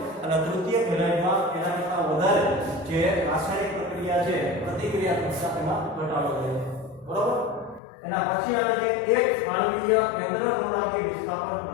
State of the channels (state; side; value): drops out; right; at 7.8 s